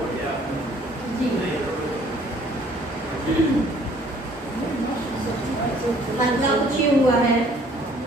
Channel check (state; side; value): normal; both; correlation 0.58